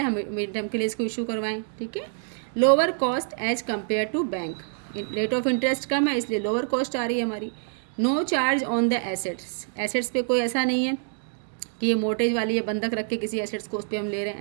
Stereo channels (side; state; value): left; silent; digital silence